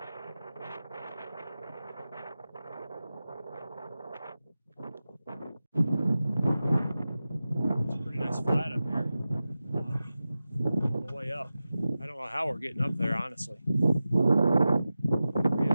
Flat up here on the way up. I don't know how we're getting up there, honestly. We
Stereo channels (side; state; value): both; inverted; correlation -0.94